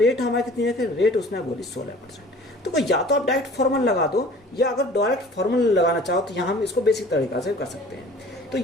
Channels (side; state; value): both; normal; correlation 0.47